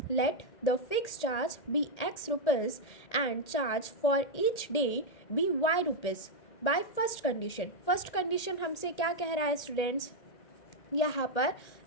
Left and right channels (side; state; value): right; late; 1.8 ms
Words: Let the fix charge be x rupees and charge for each day be y rupees by first condition. First condition हमसे क्या कह रहा है स्टूडेंट्स, यहाँ पर